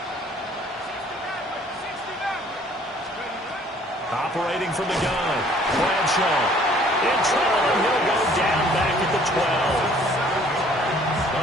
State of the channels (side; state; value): both; normal; correlation 0.57